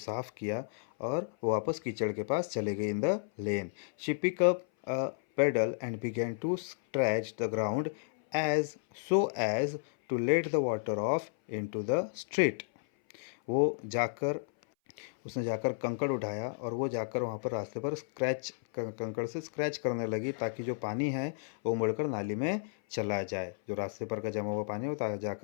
किया और वो वापस कीचड़ के पास चले गई in the lane. She pick up a paddle and began to scratch the ground as so as to let the water off into the street. वो जाकर उसने जाकर कंकड़ उठाया और वो जाकर वहाँ पर रास्ते पर कंकड़ से स्क्रैच करने लगी, ताकि जो पानी है वो मुड़कर नाली में चला जाए। जो रास्ते पर का जमा हुआ पानी है वो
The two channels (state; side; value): silent; right; 56 dB below the other